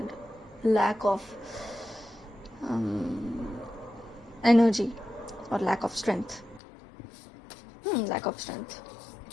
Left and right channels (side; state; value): right; drops out; at 6.6 s